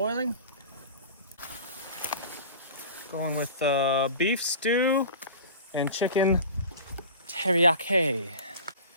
Going with beef stew and chicken teriyaki.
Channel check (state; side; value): inverted; both; correlation -0.38